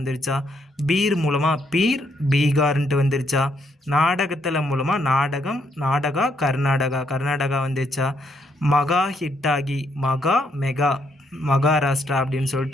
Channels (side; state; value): both; normal; correlation 0.74